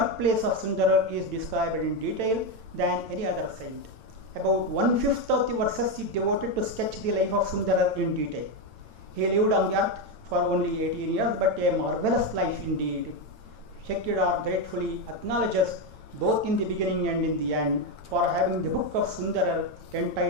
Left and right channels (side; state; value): left; late; 9.0 ms